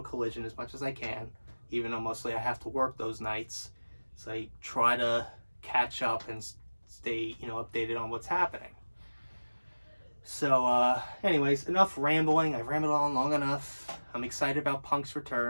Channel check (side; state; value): both; inverted; correlation -1.00